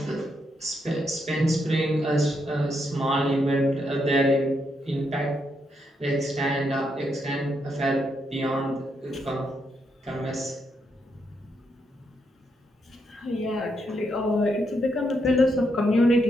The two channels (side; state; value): both; normal; correlation 0.79